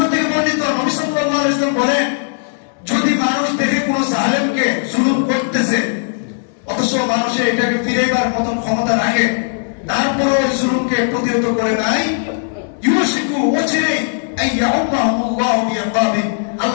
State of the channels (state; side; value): silent; right; digital silence